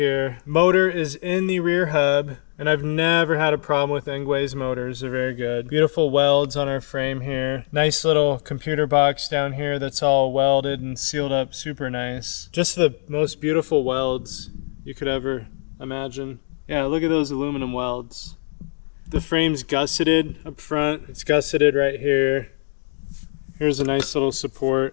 Motor is in the rear hub, and I've never had a problem with Engwe's motors. They're very good. Beautiful welds on our frame here. Nice little computer box down here that's all welded and sealed up super nice. Just the most beautiful welds you could ever imagine. Yeah, look at those aluminum welds. The frame's gusseted up front. It's gusseted right here. Here's a nice little support.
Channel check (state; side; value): silent; right; digital silence